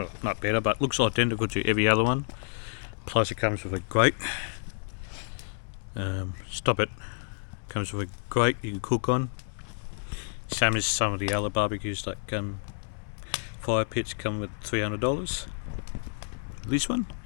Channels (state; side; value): silent; right; digital silence